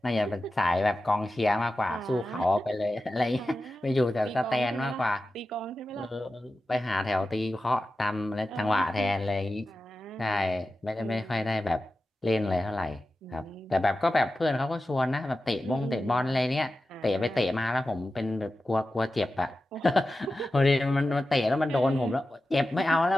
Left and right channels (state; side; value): normal; both; correlation 0.93